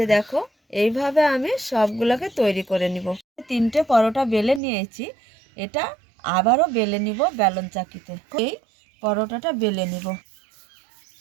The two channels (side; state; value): left; drops out; at 4.6 s